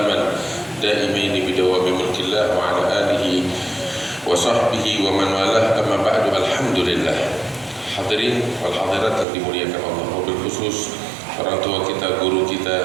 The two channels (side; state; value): left; drops out; at 9.2 s